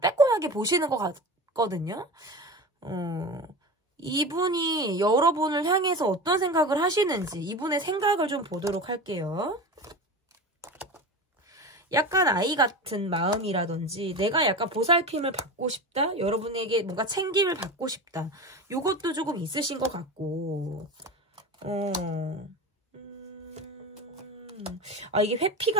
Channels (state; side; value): normal; both; correlation 0.28